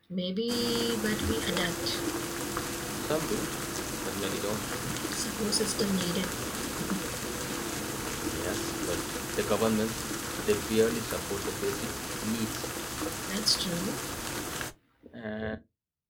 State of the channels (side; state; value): both; identical; correlation 1.00